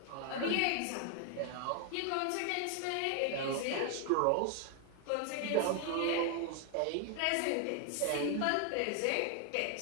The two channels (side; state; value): both; different; correlation 0.00